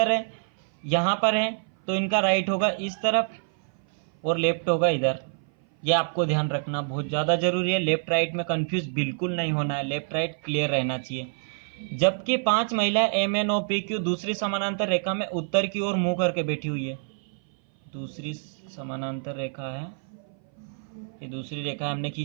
है, यहाँ पर है, तो इनका राइट होगा इस तरफ और लेफ्ट होगा इधर। ये आपको ध्यान रखना बहुत ज़्यादा जरूरी है। लेफ्ट राइट में कंफ्यूज बिल्कुल नहीं होना है, लेफ्ट राइट क्लियर रहना चाहिए। जबकि 5 महिलाएं M N O P Q दूसरी समानांतर रेखा में उत्तर की ओर मुंह करके बैठी हुई है। दूसरी समानांतर रेखा है, ये दूसरी रेखा हमने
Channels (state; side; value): silent; left; 57 dB below the other